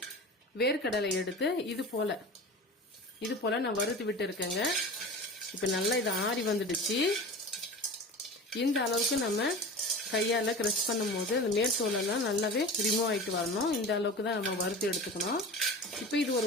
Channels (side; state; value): both; normal; correlation 0.33